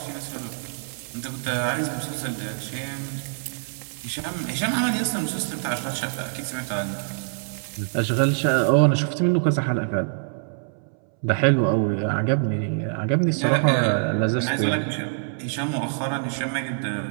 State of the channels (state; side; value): silent; left; 62 dB below the other